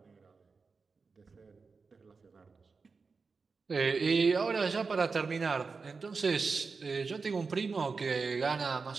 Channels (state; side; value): quieter; left; 4.7 dB